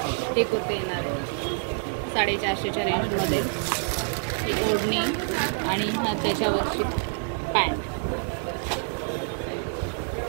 ही कुर्ती येणार आहे. 450च्या रेंजमध्ये ही ओढणी आणि हा त्याच्यावरची पॅन्ट.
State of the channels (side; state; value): left; silent; 60 dB below the other